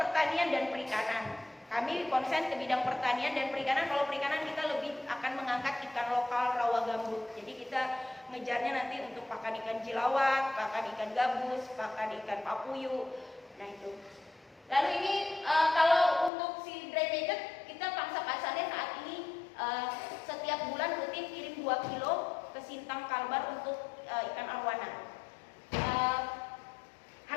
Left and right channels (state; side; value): drops out; right; at 16.3 s